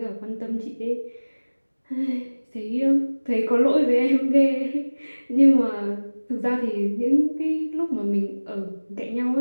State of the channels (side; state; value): both; inverted; correlation -1.00